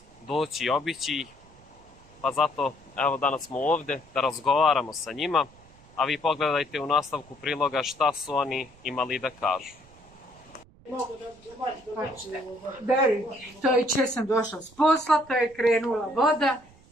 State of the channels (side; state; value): right; noise; rumble, 25 dB below the sound